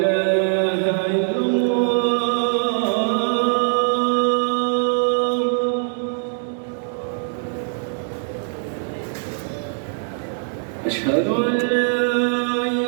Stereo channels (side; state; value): left; silent; digital silence